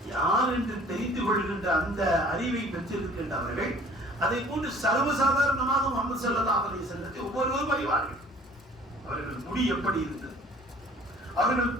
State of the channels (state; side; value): normal; both; correlation 0.51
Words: யார் என்று தெரிந்து கொள்கின்ற அந்த அறிவை பெற்றிருக்கின்றவர்கள் அதை போன்று சர்வசாதாரணமாக முஹம்மது ஸல்லல்லாஹு அலைஹி வஸல்லத்தை ஒவ்வொருவரும் அறிவார்கள். அவர்கள் முடி எப்படி இருந்தது, அவர்கள்